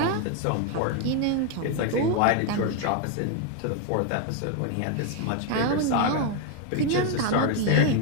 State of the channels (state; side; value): different; both; correlation 0.01